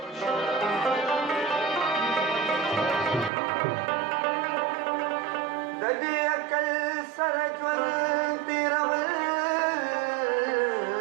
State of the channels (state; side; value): drops out; left; at 3.3 s